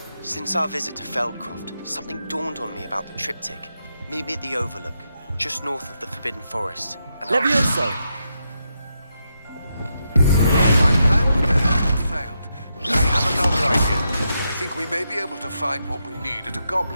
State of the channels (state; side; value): inverted; both; correlation -0.83